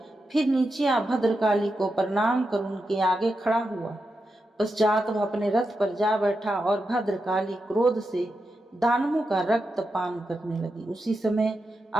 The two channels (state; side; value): normal; both; correlation 0.88